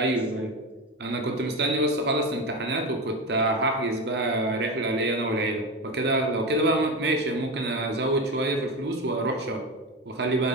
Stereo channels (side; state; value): both; normal; correlation 0.20